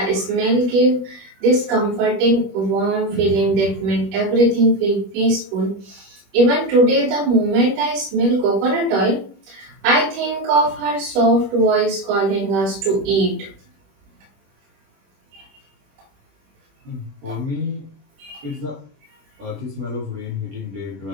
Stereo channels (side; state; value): left; late; 21 ms